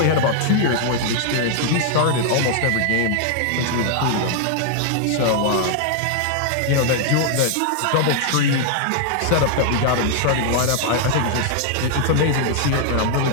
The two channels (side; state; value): both; different; correlation 0.00